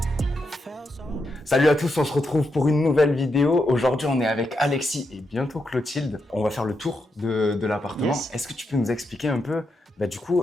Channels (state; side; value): normal; both; correlation 0.83